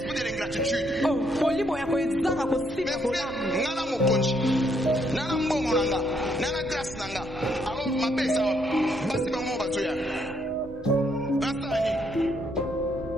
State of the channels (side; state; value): right; noise; hum, 28 dB below the sound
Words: de l'ingratitude. Mes frères, nana mokonji, nana mbongo nanga, nana grâce nanga. Alors ma belle ça, basi ba mo bazoya. Asani.